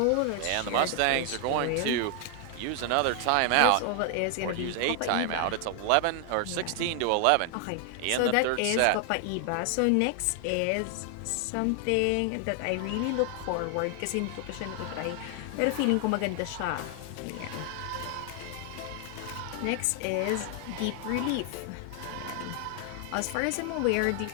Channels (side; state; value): both; different; correlation 0.00